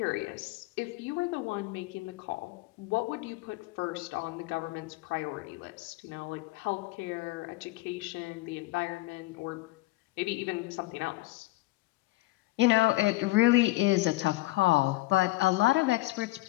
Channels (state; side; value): quieter; right; 20.1 dB